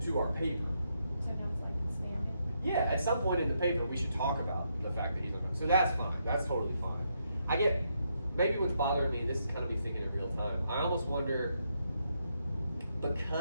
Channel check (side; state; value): both; inverted; correlation -0.79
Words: to our paper. So now it's like expanding. Yeah, at some point in the paper, we should talk about the fact that he's uncomfortable. So that's fine, that's totally fine. I get, maybe what's bothering me, this is kind of me thinking in real time, I almost wonder,